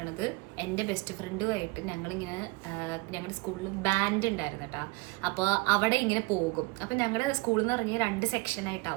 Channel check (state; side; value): quieter; left; 25.5 dB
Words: എൻ്റെ ബെസ്റ്റ് ഫ്രണ്ടുമായിട്ട് ഞങ്ങളിങ്ങനെ ഞങ്ങളുടെ സ്കൂളിൽ ബാൻഡ് ഉണ്ടായിരുന്നു കേട്ടോ. അപ്പോൾ അവിടെ ഇങ്ങനെ പോകും. അപ്പം ഞങ്ങളുടെ സ്കൂളിൽ എന്ന് പറഞ്ഞാൽ 2 സെക്ഷനായിട്ടാണ്.